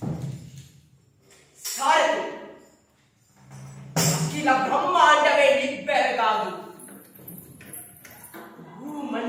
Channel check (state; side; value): identical; both; correlation 1.00